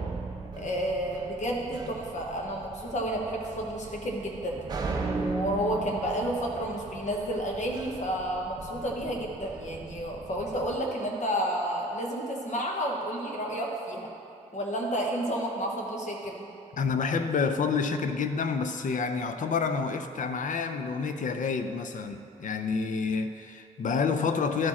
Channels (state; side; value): normal; both; correlation 0.43